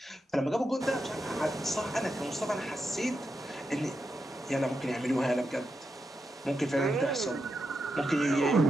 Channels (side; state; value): both; normal; correlation 0.86